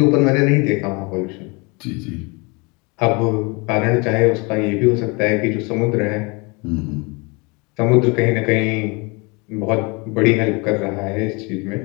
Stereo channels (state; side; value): quieter; right; 28.7 dB